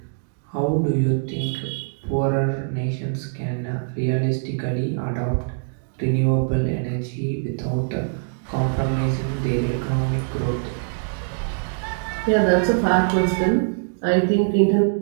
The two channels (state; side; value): silent; left; digital silence